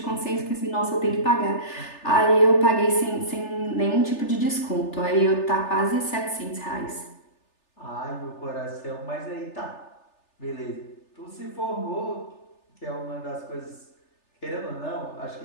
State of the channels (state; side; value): late; right; 3.3 ms